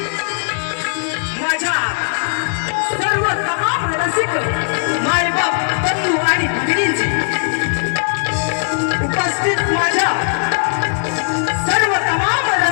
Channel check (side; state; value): right; silent; 66 dB below the other